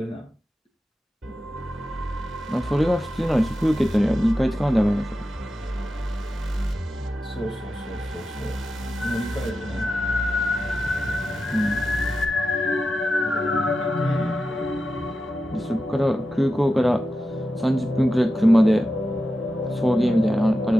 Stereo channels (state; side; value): normal; both; correlation 0.91